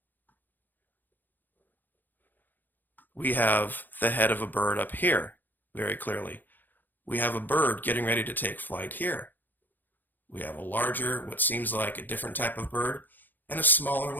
We have the head of a bird up here, very clearly. We have a bird getting ready to take flight here. We have a larger, what seems like a different type of bird, and a smaller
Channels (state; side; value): late; right; 0.088 ms